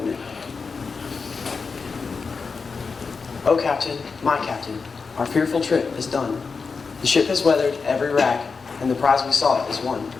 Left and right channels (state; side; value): quieter; right; 4.9 dB